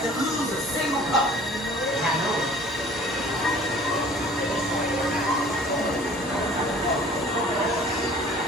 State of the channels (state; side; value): normal; both; correlation 0.49